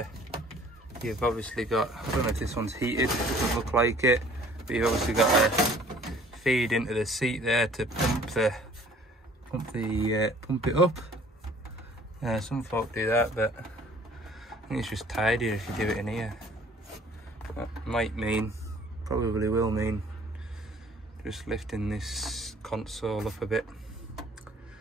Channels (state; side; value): normal; both; correlation 0.54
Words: You've obviously got, I don't know if this one's heated, it doesn't look like it, but you've obviously got a feed into the seat there to pump it up. Some folk do that, but I think it's just tidier if you do it in here. That might mean, probably will mean, just lifting this console up a bit.